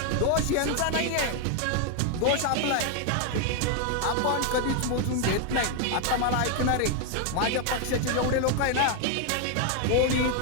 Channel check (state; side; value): different; both; correlation 0.01